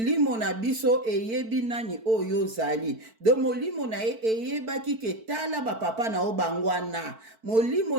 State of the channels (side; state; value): left; late; 4.5 ms